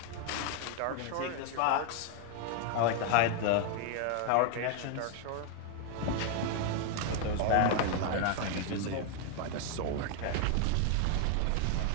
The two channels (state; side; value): different; both; correlation 0.00